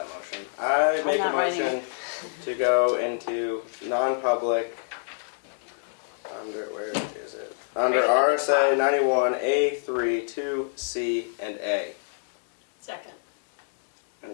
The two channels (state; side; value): silent; right; 61 dB below the other